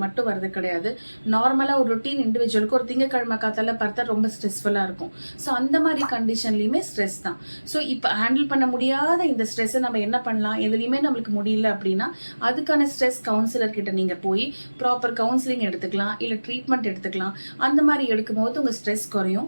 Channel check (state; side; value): inverted; both; correlation -1.00